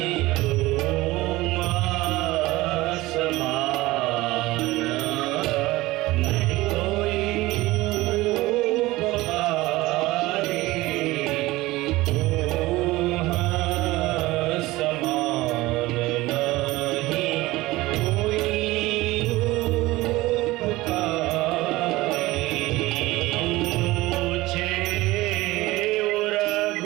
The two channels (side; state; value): left; quieter; 19.1 dB